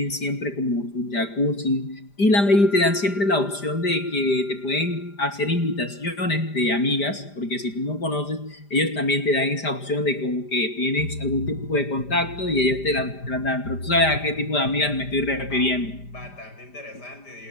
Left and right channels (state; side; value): late; right; 5.0 ms